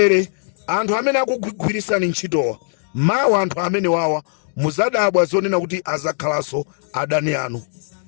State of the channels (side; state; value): right; silent; digital silence